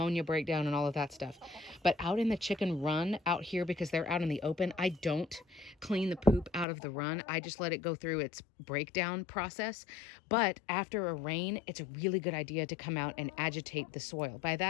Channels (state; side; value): drops out; right; at 6.7 s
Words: breakdown and all of that stuff. But out in the chicken run out here, because they're out in the open, I don't clean the poop out of the run. I just let it go through its breakdown process. But after a rain, it's a really good idea to come out and agitate the soil. By